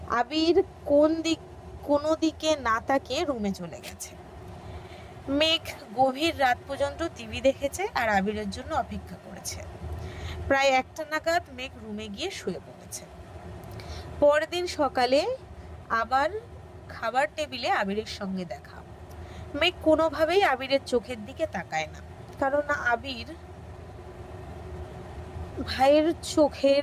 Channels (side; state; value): both; identical; correlation 1.00